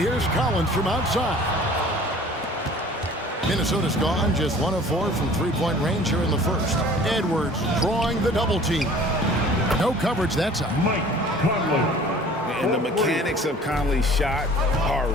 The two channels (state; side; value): normal; both; correlation 0.48